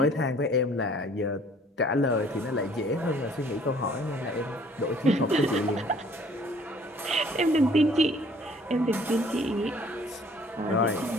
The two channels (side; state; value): both; normal; correlation 0.57